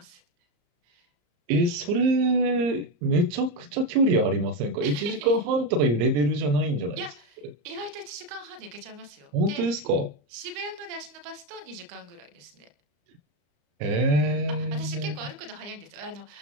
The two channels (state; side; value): late; left; 34 ms